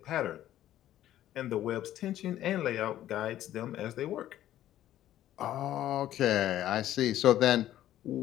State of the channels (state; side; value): quieter; right; 12.7 dB